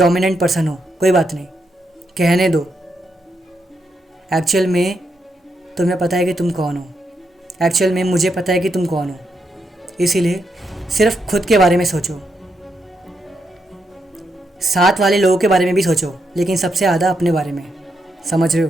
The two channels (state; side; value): normal; both; correlation 0.81